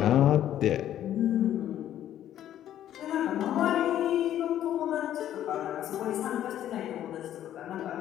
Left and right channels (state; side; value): quieter; right; 11.6 dB